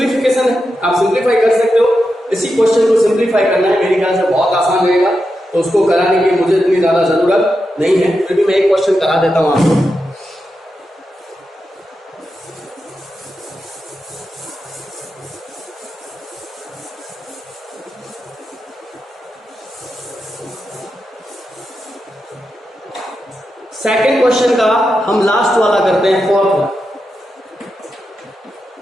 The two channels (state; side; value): normal; both; correlation 0.88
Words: है, आप सिंपलीफाई कर सकते हो। इसी क्वेश्चन को सिंपलीफाई करना है, मेरे ख्याल से बहुत आसान रहेगा, तो उसको कराने की मुझे इतनी ज्यादा जरूरत नहीं है, फिर भी मैं एक क्वेश्चन करा देता हूं आपको। सेकंड क्वेश्चन का हम लास्ट वाला करते हैं, फोर्थ वाला।